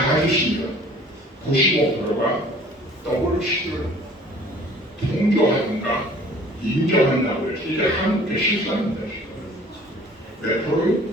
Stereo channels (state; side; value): normal; both; correlation 0.51